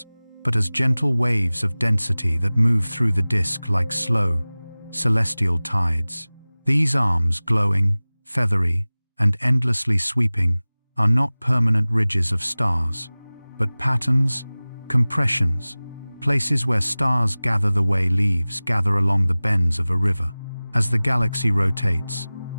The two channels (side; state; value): both; inverted; correlation -0.99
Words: but as gentle waves of density that move through the disk like slow, celestial tides. These arms, glowing, feathery, and endlessly sweeping, are not permanent ridges of stars, but patterns, compressions, places where stars gather the way leaves gather along the bends of a river. As the galaxy rotates,